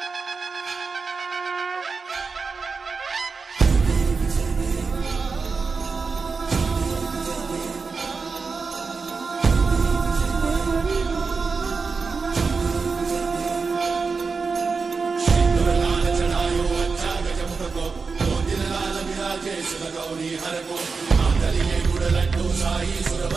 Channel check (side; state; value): left; quieter; 4.7 dB